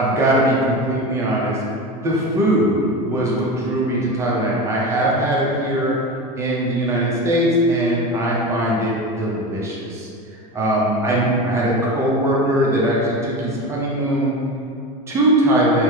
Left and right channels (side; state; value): both; normal; correlation 0.25